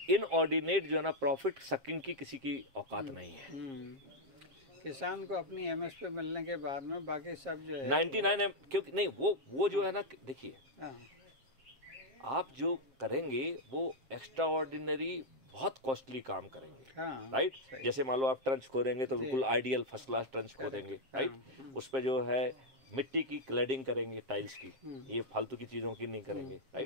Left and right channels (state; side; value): late; left; 7.4 ms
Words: इनऑर्डिनेट जो है ना प्रॉफिट सकिंग की किसी की औकात नहीं है। किसान को अपनी MSP मिलने के बाद में बाकी सब जो है 99 क्योंकि नहीं, वो जो है ना, देखिए आप जो करेंगे वो एक्स्ट्रा ऑर्डिनरी बहुत कॉस्टली काम करेंगे, राइट। जैसे मान लो आप ट्रंच खोदेंगे तो बिल्कुल आइडियल फर्स्ट क्लास ट्रंच खोदेंगे, राइट। उस पे जो है मिट्टी की क्लैडिंग करेंगे, टाइल्स की, ये फालतू की चीजों की नहीं करेंगे,